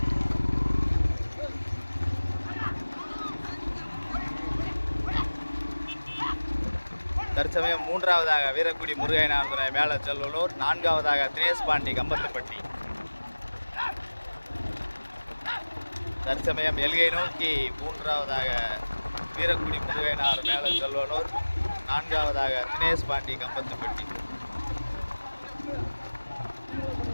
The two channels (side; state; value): both; inverted; correlation -1.00